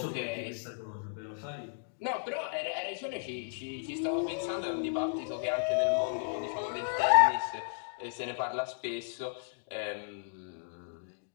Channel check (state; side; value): silent; right; digital silence